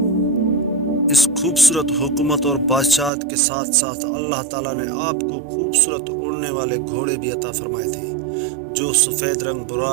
اس خوبصورت حکومت اور بادشاہت کے ساتھ ساتھ اللہ تعالیٰ نے آپ کو خوبصورت اڑنے والے گھوڑے بھی عطا فرمائے تھے جو سفید رنگ،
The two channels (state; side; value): drops out; left; at 3.1 s